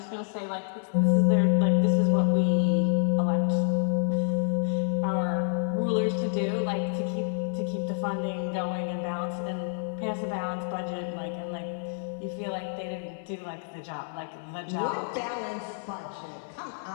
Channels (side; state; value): right; silent; digital silence